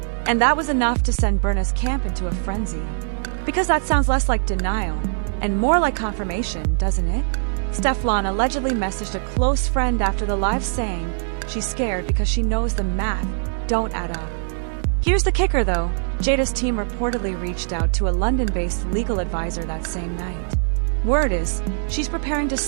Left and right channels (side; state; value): left; silent; digital silence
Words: And that was enough to send Burna's camp into a frenzy. Because that sounds less like denial and more like confirmation, doesn't it? Stefflon allegedly messaged a close friend after the live saying she's scared because she knows the math don't add up. Here's the kicker though. Jada's team reportedly reached out to a London-based legal advisor that same night. Word is, she's preparing to